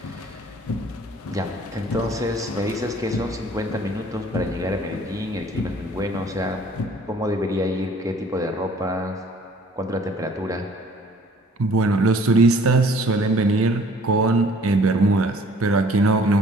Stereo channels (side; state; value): both; normal; correlation 0.54